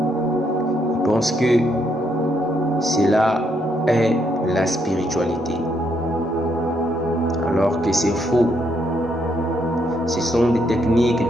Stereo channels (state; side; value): normal; both; correlation 0.75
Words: ils pensent que cela est la spiritualité. alors que c'est faux. Ce sont des techniques